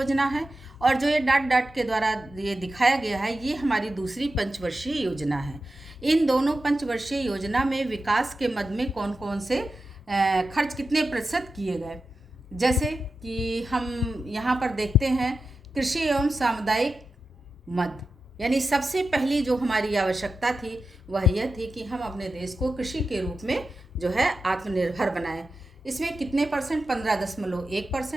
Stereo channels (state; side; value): normal; both; correlation 0.91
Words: है, और जो ये डाट के द्वारा ये दिखाया गया है ये हमारी दूसरी पंचवर्षीय योजना है। इन दोनों पंचवर्षीय योजना में विकास के मद में कौन कौन से खर्च कितने प्रतिशत किए गए, जैसे कि हम यहाँ पर देखते हैं कृषि एवं सामुदायिक मद। यानी सबसे पहली जो हमारी आवश्यकता थी वह यह थी कि हम अपने देश को कृषि के रूप में जो है आत्मनिर्भर बनाएं। इसमें कितने परसेंट?